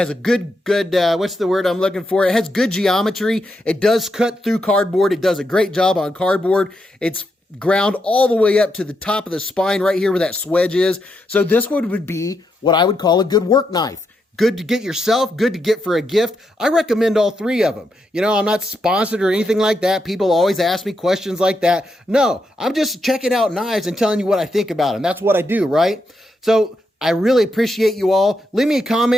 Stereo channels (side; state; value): both; normal; correlation 0.82